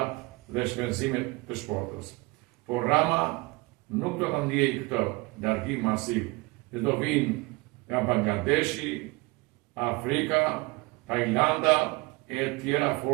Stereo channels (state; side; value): quieter; left; 24.2 dB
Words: dhe shpenzimet të shportës. Por Rama nuk do të ndjejë këtë largim masiv, dhe do vinë nga Bangladeshi, Afrika, Tajlanda e tjera